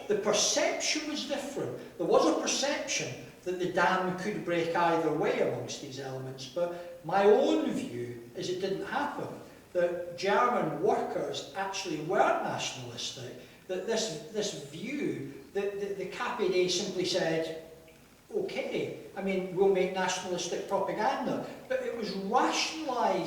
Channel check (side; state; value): both; identical; correlation 1.00